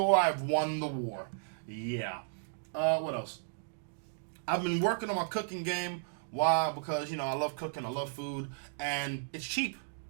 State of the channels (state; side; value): silent; left; digital silence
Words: I've won the war. Yeah. What else? I've been working on my cooking game. Why? Because, you know, I love cooking, I love food, and it's cheap.